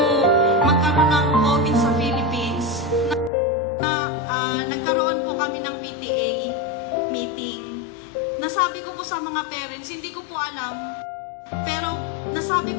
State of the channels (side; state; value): right; drops out; at 3.3 s